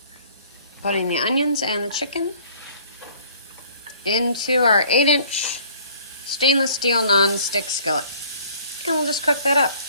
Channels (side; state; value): both; inverted; correlation -0.55